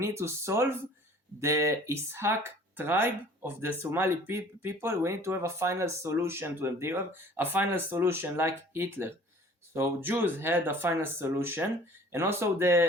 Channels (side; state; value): both; normal; correlation 0.50